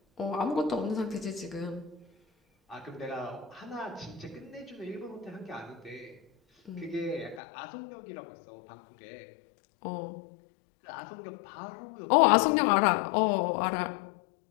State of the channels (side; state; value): right; drops out; at 7.4 s